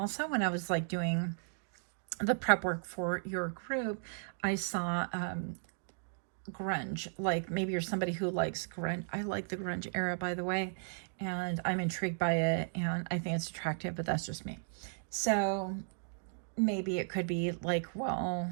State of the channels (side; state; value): left; silent; digital silence